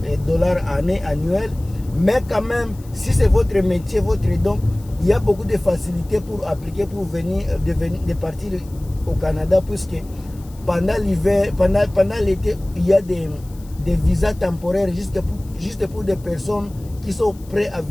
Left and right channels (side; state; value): left; noise; hiss, 25 dB below the sound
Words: $ année annuelle, mais quand même, si c'est votre métier, votre don, il y a beaucoup de facilités pour appliquer, pour de partir au Canada, puisque pendant l'hiver, pendant l'été, il y a des visas temporaires juste pour des personnes qui sont prêtes à